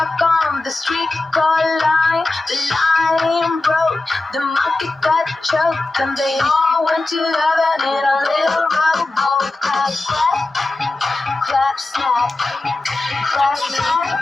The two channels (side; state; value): right; quieter; 3.0 dB